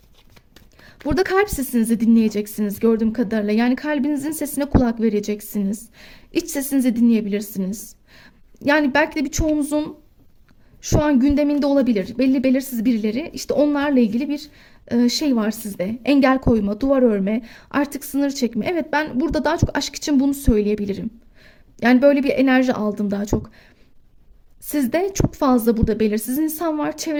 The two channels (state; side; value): identical; both; correlation 1.00